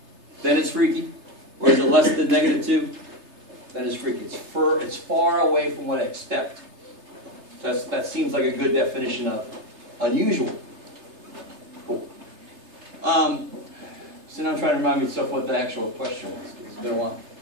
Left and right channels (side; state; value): left; late; 3.3 ms